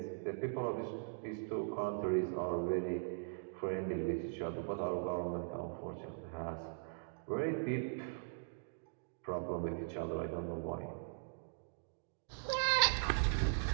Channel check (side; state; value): left; silent; digital silence